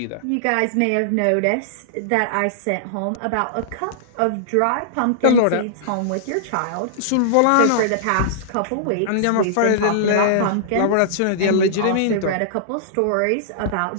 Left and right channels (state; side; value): different; both; correlation -0.02